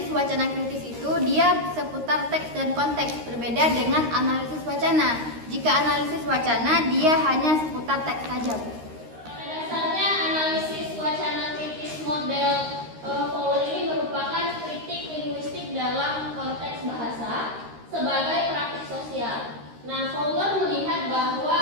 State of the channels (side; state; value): left; late; 13 ms